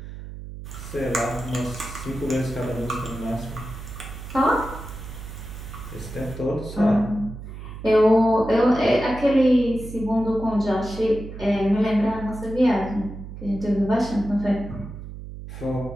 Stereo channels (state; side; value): noise; right; hum, 11 dB below the sound